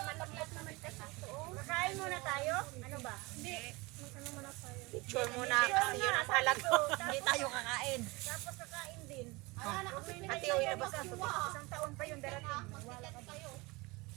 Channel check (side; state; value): left; quieter; 24.3 dB